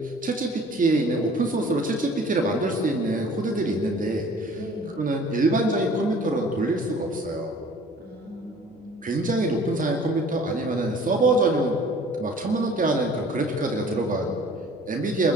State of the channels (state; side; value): noise; right; hum, 30 dB below the sound